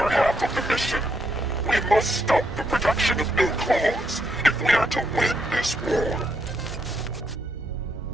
half of the mission. We must stop the production of new clones if we are to win this war.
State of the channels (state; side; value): normal; both; correlation 0.77